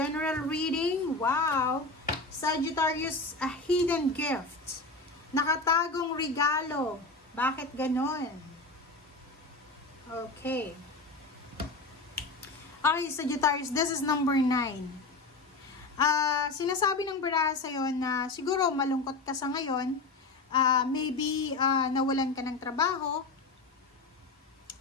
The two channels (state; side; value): quieter; right; 3.5 dB